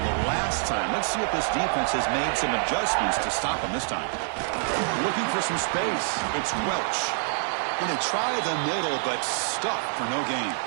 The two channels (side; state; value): left; silent; 61 dB below the other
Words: the last time. Let's see if this defense has made some adjustments to stop them this time. Looking for some space. It's Welch. Going to try the middle, but stuck for no gain.